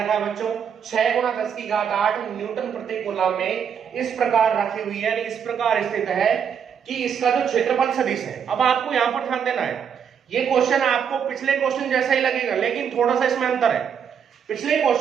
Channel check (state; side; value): quieter; left; 7.6 dB